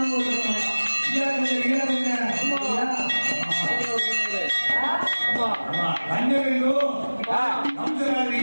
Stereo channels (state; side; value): inverted; both; correlation -1.00